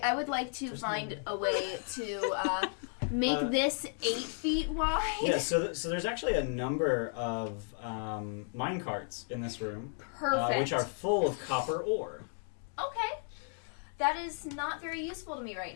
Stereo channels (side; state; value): right; silent; 55 dB below the other